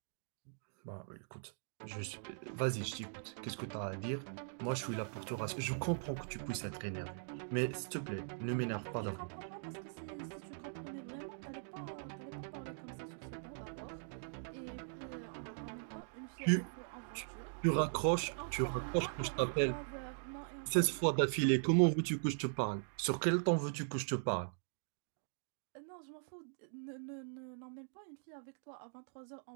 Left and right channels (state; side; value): silent; left; digital silence